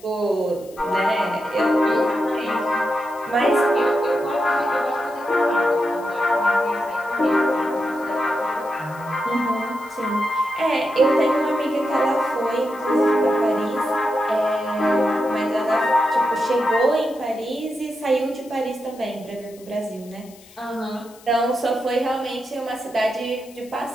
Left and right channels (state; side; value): noise; left; hiss, 24 dB below the sound